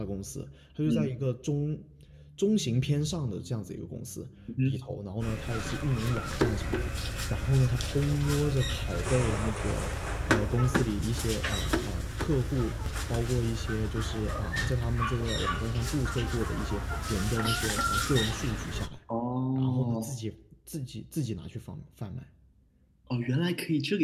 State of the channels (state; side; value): identical; both; correlation 1.00